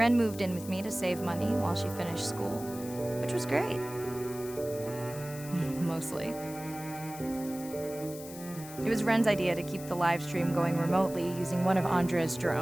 moved in with me to save money while she finished school, which was great. Mostly. It was Ren's idea to keep the live stream going remotely using one of Andre's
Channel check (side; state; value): left; noise; hiss, 14 dB below the sound